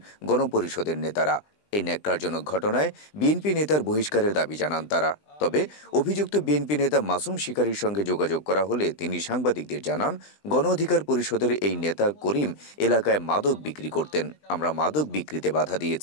গণপরিষদের নেতারা। এই ন্যাক্কারজনক ঘটনায় বিএনপি নেতার বহিষ্কারের দাবি জানান তারা। তবে অভিযুক্ত বিএনপি নেতা মাসুম শিকারীর সঙ্গে যোগাযোগ করা হলে তিনি সাংবাদিকদের জানান, গণ অধিকার পরিষদের এই নেতা করিম এলাকায় মাদক বিক্রি করতেন। আমরা মাদক বিক্রিতে বাধা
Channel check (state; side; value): late; right; 20 ms